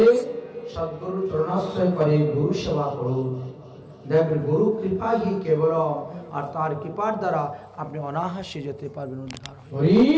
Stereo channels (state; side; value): identical; both; correlation 1.00